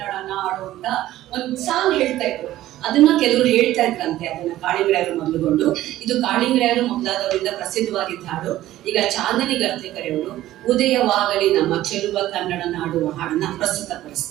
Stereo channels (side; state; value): left; quieter; 14.5 dB